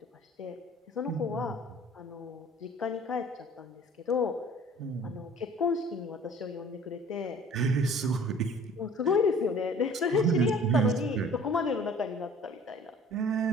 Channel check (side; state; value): both; normal; correlation 0.49